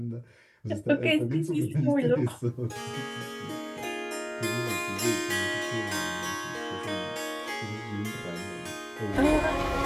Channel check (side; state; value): both; identical; correlation 1.00